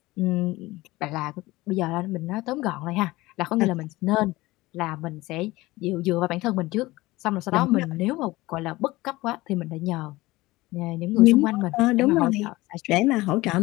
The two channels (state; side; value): quieter; right; 19.6 dB